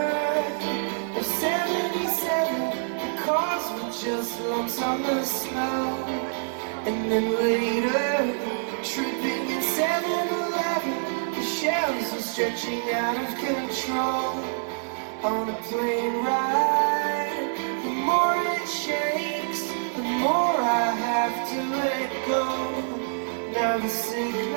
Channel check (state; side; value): silent; left; 57 dB below the other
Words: of 77, the cars were just lumps on the snow. And then later, tripping at 7-Eleven, the shelves were stretching out of control. On a plane ride, the more it shakes, the more I have to let go. Now the